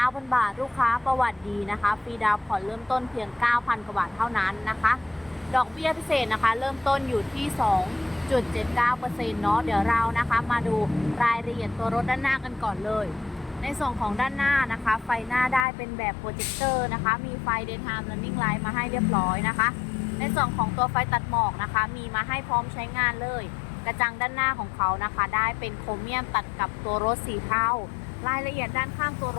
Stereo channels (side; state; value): right; drops out; at 15.7 s